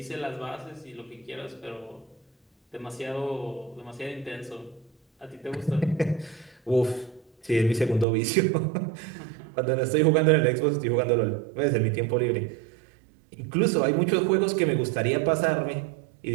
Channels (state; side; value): drops out; left; at 8.1 s